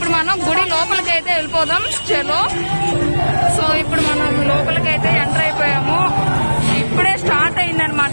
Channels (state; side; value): inverted; both; correlation -1.00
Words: మనం గుడి లోపలికి అయితే వెళ్ళిపోదాం. చలో. సో ఇప్పుడు మనం లోపలికైతే ఎంటర్ అయిపోయాము. ఇప్పుడే స్టార్ట్